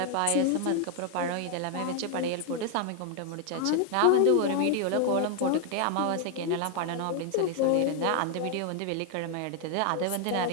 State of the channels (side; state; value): both; different; correlation 0.00